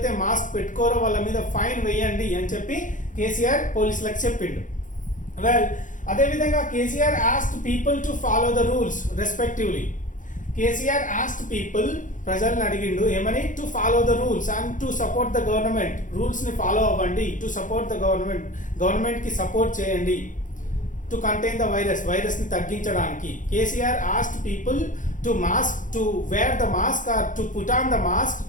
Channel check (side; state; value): right; late; 0.37 ms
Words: మాస్క్ పెట్టుకోరో వాళ్ళ మీద ఫైన్ వేయండి అని చెప్పి కేసీఆర్ పోలీసులకు చెప్పిండు. వెల్, అదేవిధంగా KCR asked people to follow the rules respectively. KCR asked people, ప్రజల్ని అడిగిండు ఏమని? To follow the rules and to support the government. రూల్స్ని ఫాలో అవ్వండి. టు సపోర్ట్ ద గవర్నమెంట్కి సపోర్ట్ చేయండి. టు కంటైన్ ద వైరస్ని తగ్గించడానికి. KCR asked people to wear the mask or to put on the mask